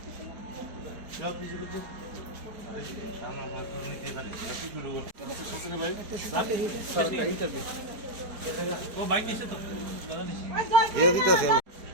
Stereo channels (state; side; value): late; left; 4.6 ms